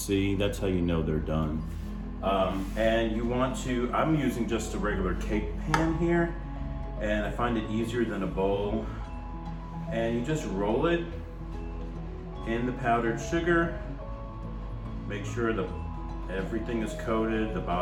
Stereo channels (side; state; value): both; identical; correlation 1.00